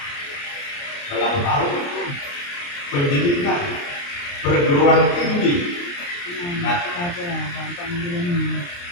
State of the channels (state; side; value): late; right; 29 ms